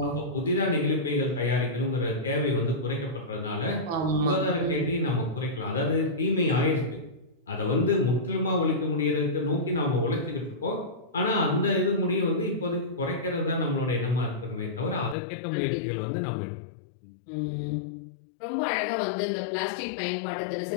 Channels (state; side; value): drops out; right; at 15.2 s